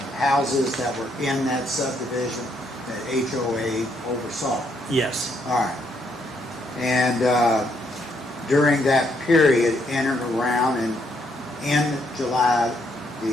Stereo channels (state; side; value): normal; both; correlation 0.73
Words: houses that were in that subdivision that HOA oversaw? Yes. All right. And during that period, in and around and in July